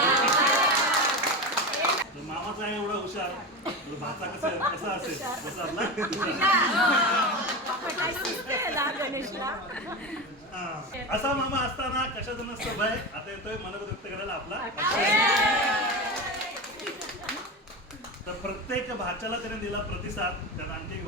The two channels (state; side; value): normal; both; correlation 0.22